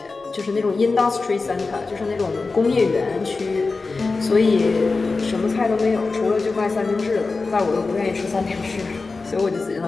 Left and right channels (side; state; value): right; quieter; 3.9 dB